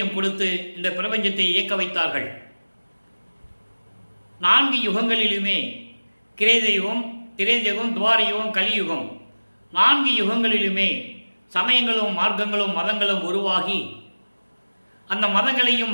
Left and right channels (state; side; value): inverted; both; correlation -1.00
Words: கொடுத்து இந்த பிரபஞ்சத்தை இயக்க வைத்தார்கள். 4 யுகங்களிலுமே கிரேதயுகம், திரேதயுகம், துவாரயுகம், கலியுகம் 4 யுகங்களிலுமே சமயங்களும் மார்க்கங்களும் மதங்களும் உருவாகி அந்த மதங்களையும்